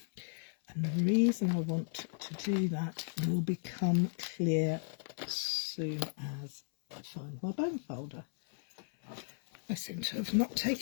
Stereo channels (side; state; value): right; silent; 54 dB below the other